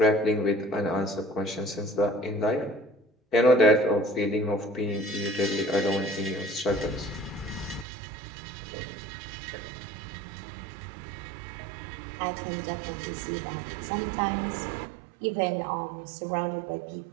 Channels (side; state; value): left; drops out; at 7.9 s